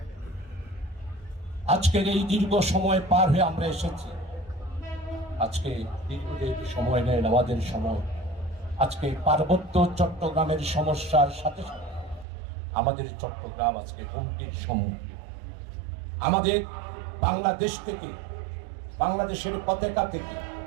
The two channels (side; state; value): left; drops out; at 12.2 s